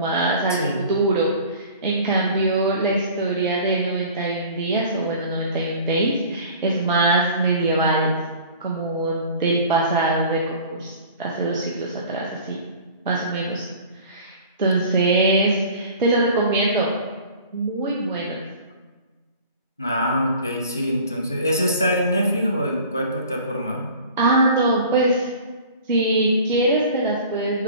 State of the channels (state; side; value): inverted; both; correlation -0.44